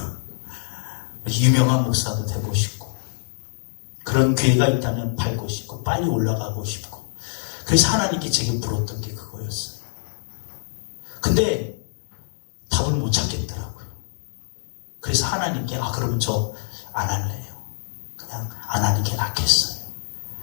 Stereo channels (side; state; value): right; silent; digital silence